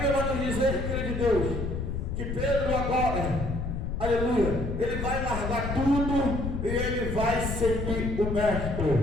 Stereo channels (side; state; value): left; noise; rumble, 3 dB below the sound